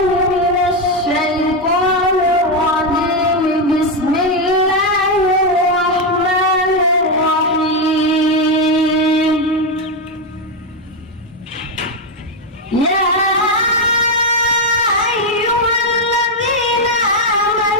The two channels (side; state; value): both; normal; correlation 0.06